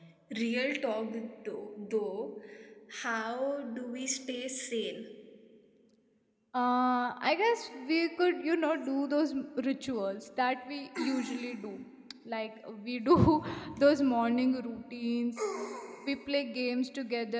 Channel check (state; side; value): identical; both; correlation 1.00